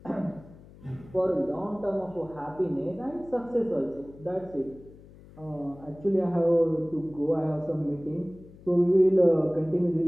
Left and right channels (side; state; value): left; noise; hum, 21 dB below the sound